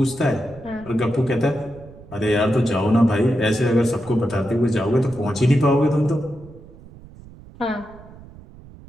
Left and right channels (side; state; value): right; noise; rumble, 20 dB below the sound